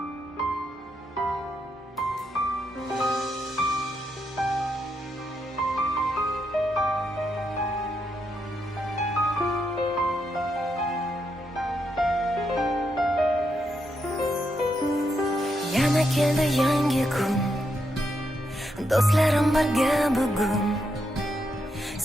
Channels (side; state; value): both; normal; correlation 0.81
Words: Yana keldi yangi kun, do'stlarim birga bugun.